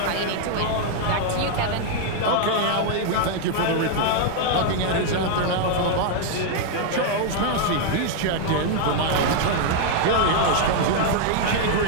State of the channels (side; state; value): both; different; correlation 0.00